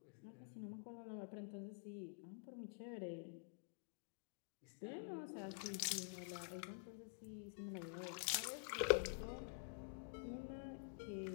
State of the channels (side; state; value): right; silent; digital silence